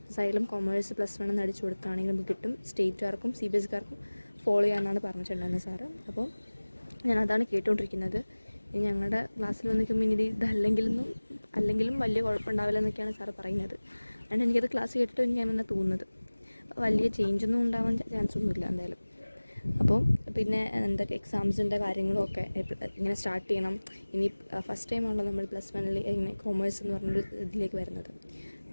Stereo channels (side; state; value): both; inverted; correlation -1.00